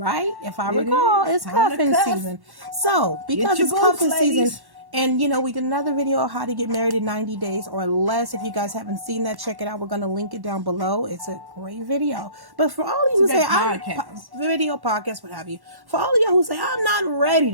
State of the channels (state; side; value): late; left; 1.1 ms